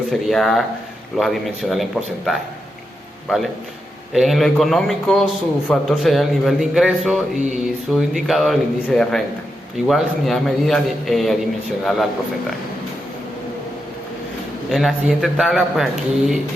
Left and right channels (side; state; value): both; normal; correlation 0.86